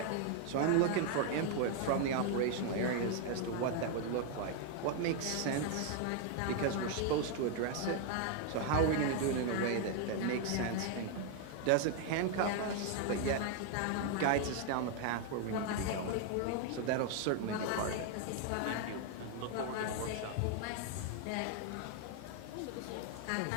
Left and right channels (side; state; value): both; different; correlation 0.00